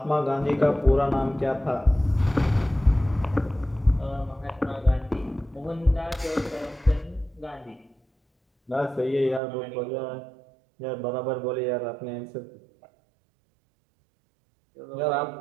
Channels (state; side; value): drops out; left; at 9.4 s